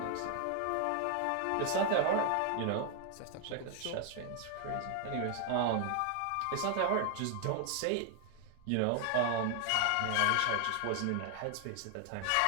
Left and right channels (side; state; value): both; different; correlation 0.00